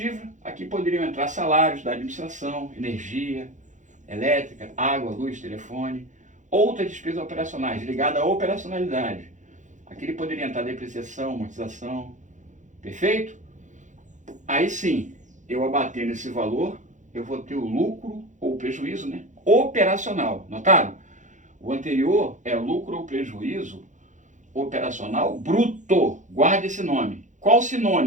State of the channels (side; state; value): left; late; 0.36 ms